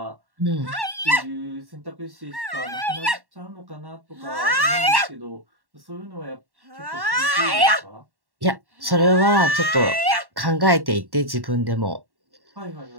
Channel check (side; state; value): left; late; 1.1 ms